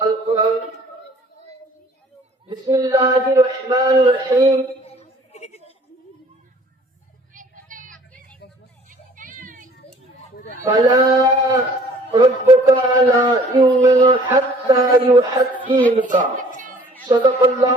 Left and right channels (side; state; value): both; normal; correlation 0.54